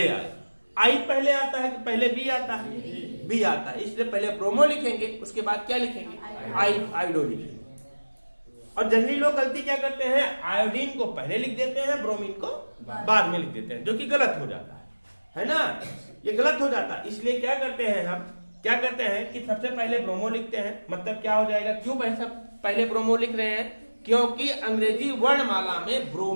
आए। आई पहले आता है कि पहले बी आता है, बी आता है, इसलिए पहले ब्रोमो लिखेंगे, उसके बाद क्या लिखेंगे, आयोडो लिखेंगे। और जनरली लोग गलती क्या करते हैं, आयोडीन को पहले लिख देते हैं, ब्रोमीन को बाद में लिख देते हैं, जो कि गलत हो जाता है ना, ये गलत हो जाता है। इसलिए क्या करते हैं हम, क्या करते हैं कि सबसे पहले ब्रोमो लिखते हैं, मतलब क्या हो जाएगा, क्यों पहले ब्रोमो लिख रहे हैं, क्योंकि अंग्रेजी वर्णमाला में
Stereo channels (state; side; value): inverted; both; correlation -1.00